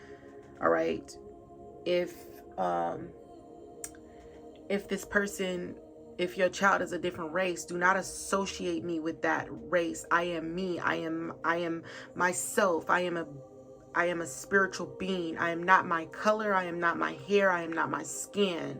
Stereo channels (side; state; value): both; identical; correlation 1.00